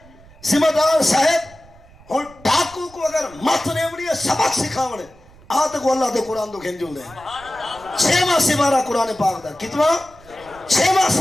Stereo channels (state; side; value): noise; right; rumble, 24 dB below the sound